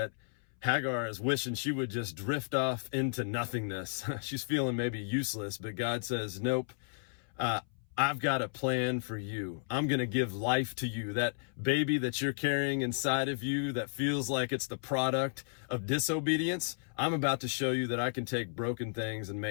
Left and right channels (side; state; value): right; silent; 56 dB below the other